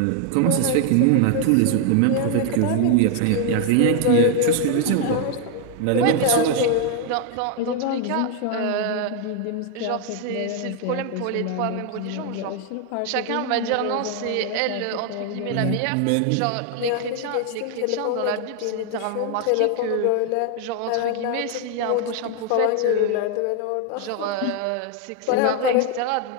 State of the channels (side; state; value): both; different; correlation 0.01